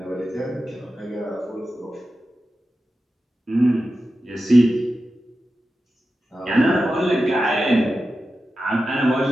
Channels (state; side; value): normal; both; correlation 0.92